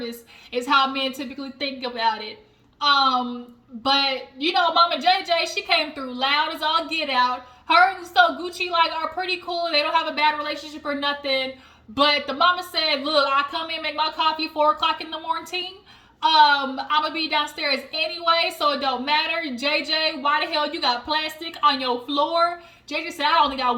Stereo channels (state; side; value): identical; both; correlation 1.00